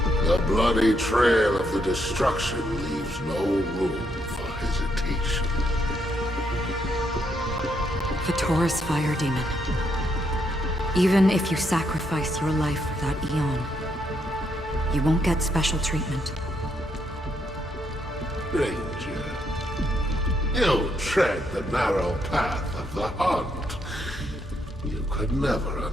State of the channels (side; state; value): both; normal; correlation 0.76